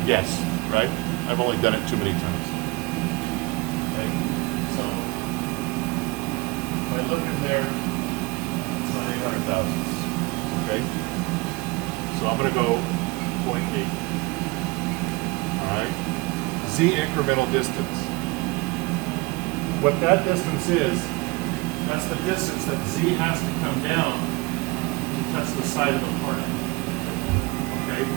guess, right? I've only done it too many times. Okay. So if I look in there, it's not 800 thousandths. Okay. So I'm going to go 0.8. All right. Z incremental distance. What that distance is, that's the distance that Z has to come down to touch the side of the part. Okay.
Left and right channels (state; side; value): quieter; left; 24.3 dB